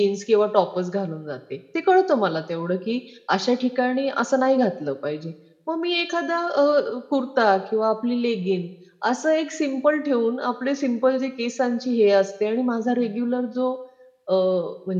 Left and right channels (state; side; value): identical; both; correlation 1.00